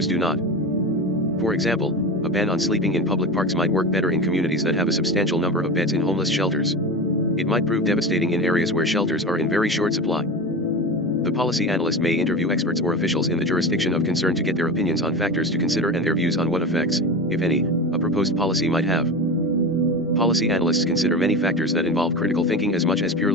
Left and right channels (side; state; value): both; normal; correlation 0.26